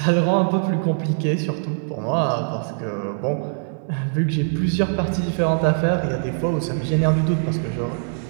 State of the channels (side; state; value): left; silent; digital silence